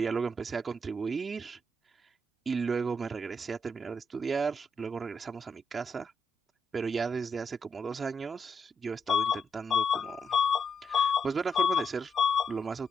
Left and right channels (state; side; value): normal; both; correlation 0.81